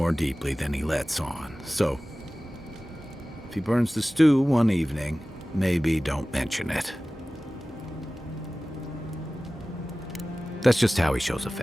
deeply than he lets on, so if he burns the stew one evening, maybe don't mention it. That's just how he shows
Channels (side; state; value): both; normal; correlation 0.97